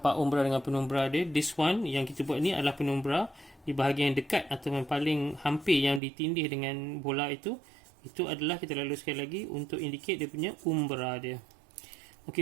umbra dengan penumbra dia. This one yang kita buat ni adalah penumbra di bahagian dekat atau yang paling hampir yang ditindih dengan bola itu. Itu adalah kita lalu sekali lagi untuk indicate dia punya umbra dia.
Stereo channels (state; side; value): drops out; left; at 6.0 s